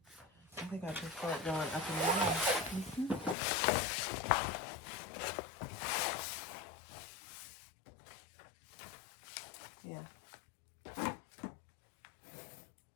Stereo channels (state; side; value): drops out; right; at 3.4 s